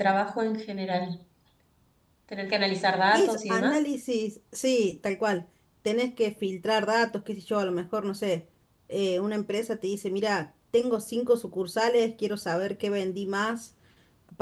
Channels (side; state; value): both; identical; correlation 1.00